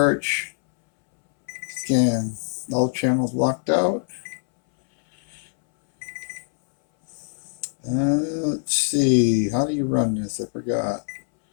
Scan. All channels blocked out. Let's see. How do you run this? I forgot.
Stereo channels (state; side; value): silent; right; 63 dB below the other